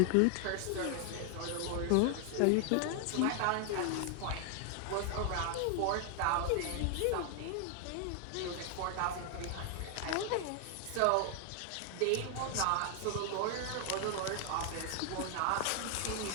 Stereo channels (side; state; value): both; different; correlation 0.00